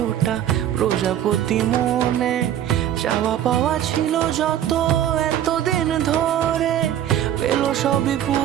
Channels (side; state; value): left; quieter; 11.0 dB